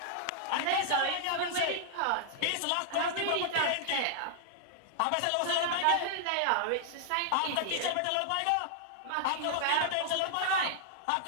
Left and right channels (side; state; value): both; different; correlation -0.01